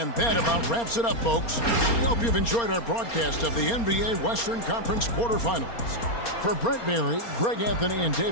that about wraps it up, folks. We hope you've enjoyed our broadcast of the NBA Western Conference quarterfinals. For Brent Berry, Greg Anthony, and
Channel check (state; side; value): late; right; 4.3 ms